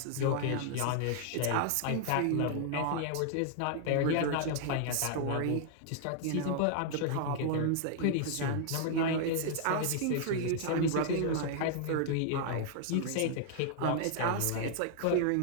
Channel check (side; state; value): both; different; correlation -0.01